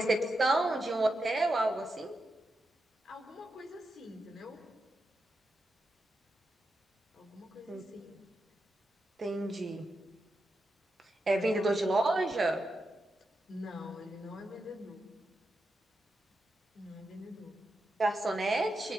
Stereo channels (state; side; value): normal; both; correlation 0.87